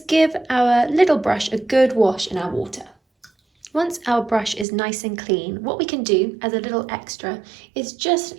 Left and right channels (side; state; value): left; drops out; at 4.7 s